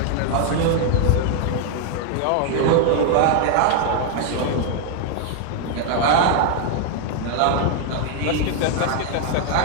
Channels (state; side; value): different; both; correlation 0.00